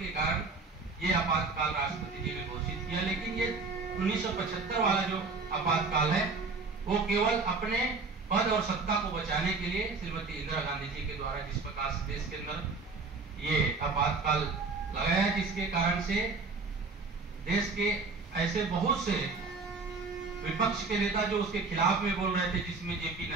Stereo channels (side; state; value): left; quieter; 4.1 dB